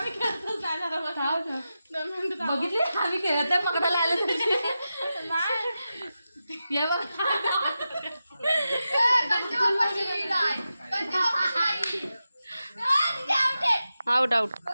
बघितले आम्ही खेळत आहे पकडायला आलं ये बघ. Out out.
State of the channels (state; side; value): inverted; both; correlation -0.91